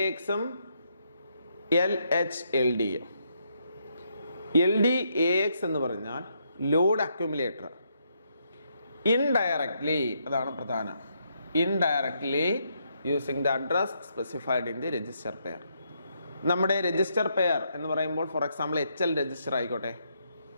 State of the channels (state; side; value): inverted; both; correlation -0.76